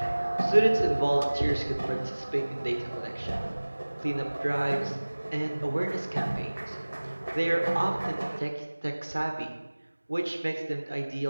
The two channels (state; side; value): inverted; both; correlation -1.00